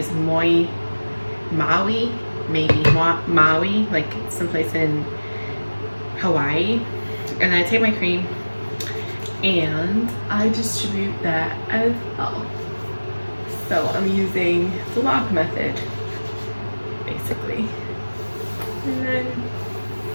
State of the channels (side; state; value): both; inverted; correlation -1.00